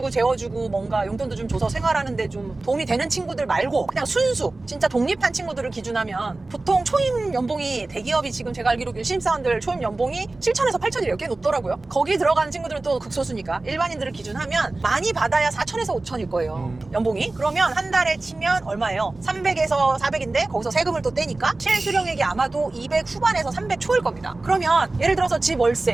재워주고 뭔가 용돈도 좀 줘서 생활하는데 좀 도움이 되는 친구들 말고 그냥 순수 진짜 독립한 친구들을 기준하면 보통 초임 연봉이 대기업이 지금 제가 알기로 신입사원들 초임 연봉이 7천에서 8천이 이렇게 높더라고요. 거기 들어가는 친구들은 또 극소수니까 일반인들을 기준하면 많이 받아야 4천에서 5천일 거예요. 연봉이. 그러면 한 달에 치면 얼마예요? 300에서 400인데 거기서 세금을 또 떼니까 실수령액이 아마도 200 후반에서 300 초일 겁니다. 그러면 예를 들어서 집 월세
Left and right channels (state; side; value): quieter; left; 3.1 dB